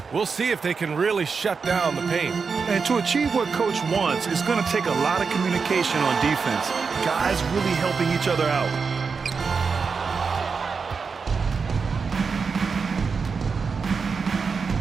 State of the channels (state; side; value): quieter; left; 5.2 dB